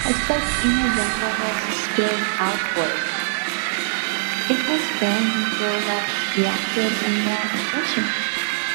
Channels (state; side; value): silent; left; 59 dB below the other